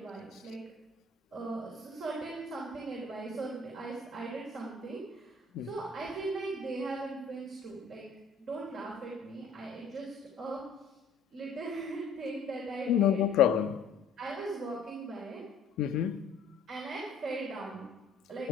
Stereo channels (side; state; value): right; quieter; 4.2 dB